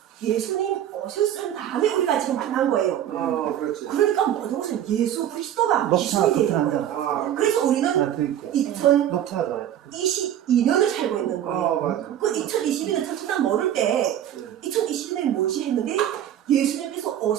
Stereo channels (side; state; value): left; quieter; 10.9 dB